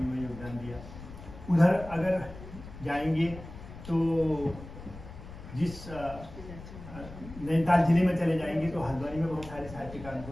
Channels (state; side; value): noise; left; rumble, 14 dB below the sound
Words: में योगदान दिया। उधर अगर जाएंगे तो जिस नैनीताल जिले में चले जाएंगे तो हल्द्वानी में बहुत सारे साहित्यकारों